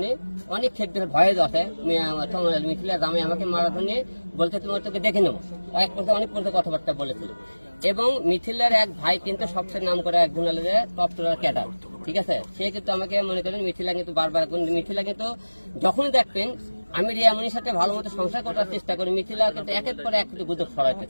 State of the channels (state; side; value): inverted; both; correlation -1.00